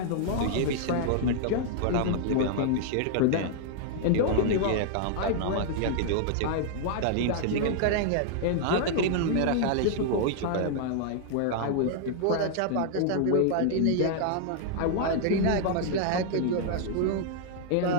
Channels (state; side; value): different; both; correlation -0.01